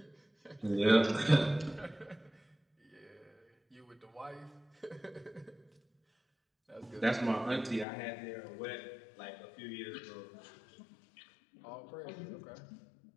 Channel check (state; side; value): drops out; right; at 7.9 s